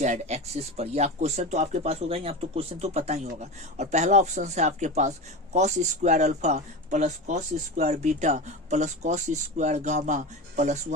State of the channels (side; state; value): both; normal; correlation 0.25